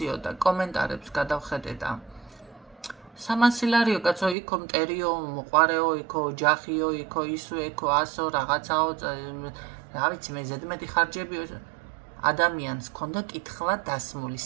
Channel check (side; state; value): left; drops out; at 4.4 s